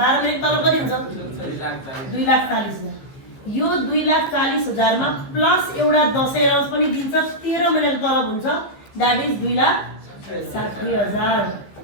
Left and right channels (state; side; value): late; right; 15 ms